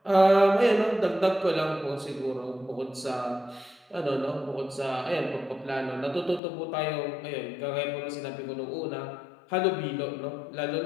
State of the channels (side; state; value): right; drops out; at 6.4 s